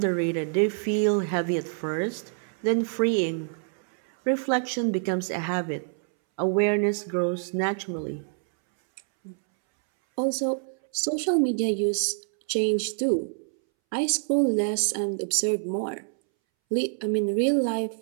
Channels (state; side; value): silent; left; 61 dB below the other